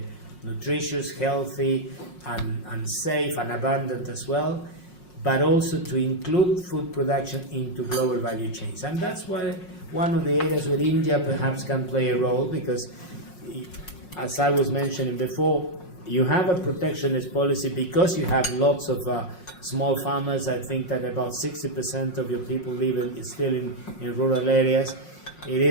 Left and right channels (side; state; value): right; late; 5.5 ms